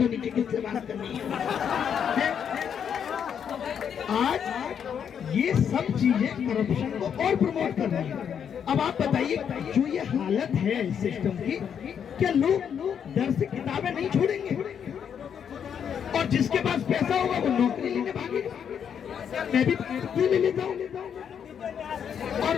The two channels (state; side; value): quieter; right; 7.9 dB